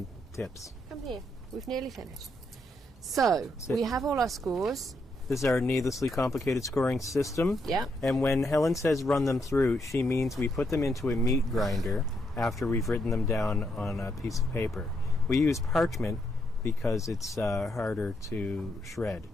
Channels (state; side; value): normal; both; correlation 0.78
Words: tips. Come here. We've nearly finished. So, we have all our scores. This is our needlessly complicated scoring system. Yeah. And when Helen says run them through, she means we put them into a meat grinder after we've written them down on a piece of paper. We use parchment because it's harder to shred.